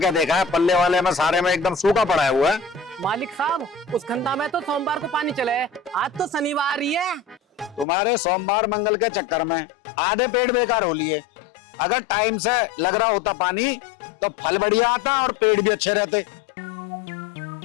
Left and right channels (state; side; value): drops out; right; at 7.9 s